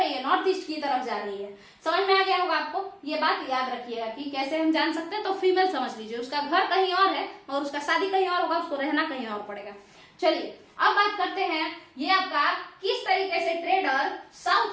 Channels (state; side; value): identical; both; correlation 1.00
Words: है? नॉर्थ ईस्ट की तरफ जा रही है। समझ में आ गया होगा आपको। ये बात याद रखिएगा कि कैसे हम जान सकते हैं। तो फीमेल समझ लीजिए, उसका घर कहीं और है और उसका शादी कहीं और होगा, उसको रहना कहीं और पड़ेगा। चलिए अब बात करते हैं, ये आपका किस तरीके से ट्रेडर